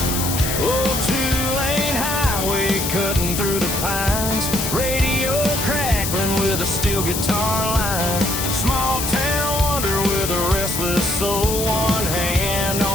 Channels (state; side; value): noise; left; hiss, 3 dB below the sound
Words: Oh, two-lane highway cutting through the pines, radio crackling with a steel guitar line. Small town wonder with a restless soul, one hand